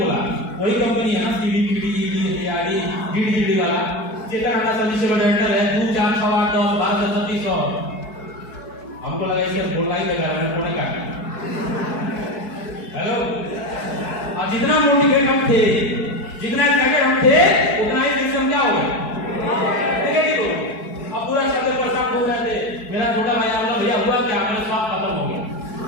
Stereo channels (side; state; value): right; late; 4.6 ms